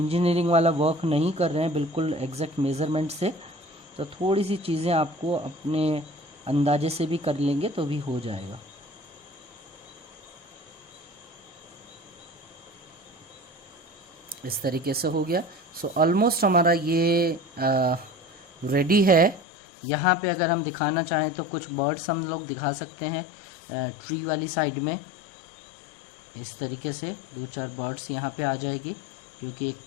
वाला वर्क नहीं कर रहे हैं बिल्कुल एग्जैक्ट मेज़रमेंट से। तो थोड़ी सी चीज़ें आपको अपने अंदाजे से भी कर लेंगे तो भी हो जाएगा। इस तरीके से हो गया। सो ऑलमोस्ट हमारा ये रेडी है। यहाँ पे अगर हम दिखाना चाहें तो कुछ बर्ड्स हम लोग दिखा सकते हैं ट्री वाली साइड में। इस तरीके से 2-4 बर्ड्स यहाँ पे आ जाएगी, क्योंकि एक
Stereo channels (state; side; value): drops out; right; at 19.4 s